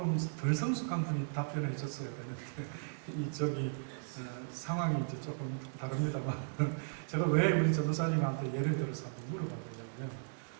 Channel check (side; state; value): left; silent; digital silence